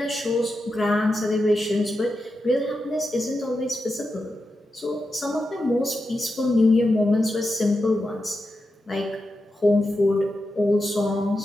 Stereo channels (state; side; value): normal; both; correlation 0.89